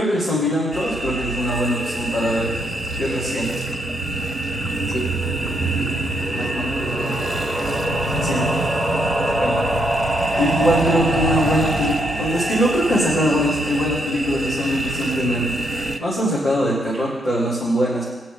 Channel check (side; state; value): both; normal; correlation 0.75